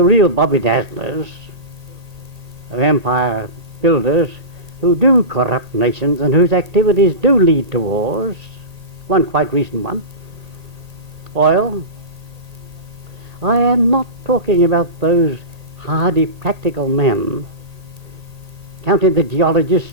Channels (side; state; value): left; late; 1.8 ms